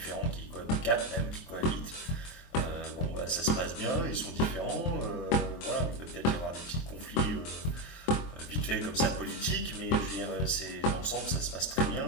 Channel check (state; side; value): late; right; 23 ms